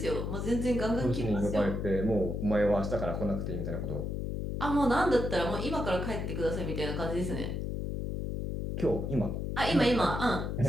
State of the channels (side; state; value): left; noise; hum, 3 dB below the sound